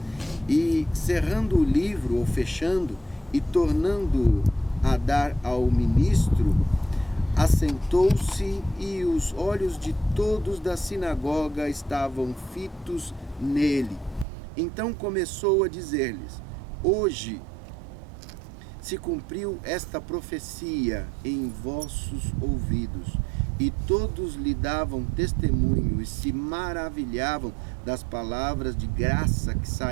E cerrando o livro, ou fechando, e tornando a dar ao ministro, assentou-se, e os olhos de todos da sinagoga estavam fitos nele. Então começou a dizer-lhes: hoje se cumpriu esta profecia em vossos ouvidos. E todos lhe davam testemunho e se maravilhavam das palavras de graça que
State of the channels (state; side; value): drops out; left; at 14.2 s